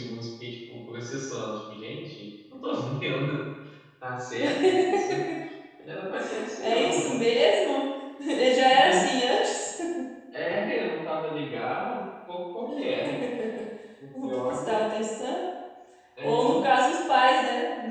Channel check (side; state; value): both; identical; correlation 1.00